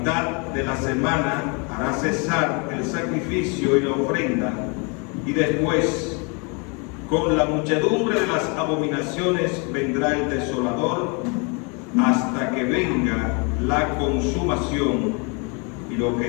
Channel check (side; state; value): right; quieter; 33.1 dB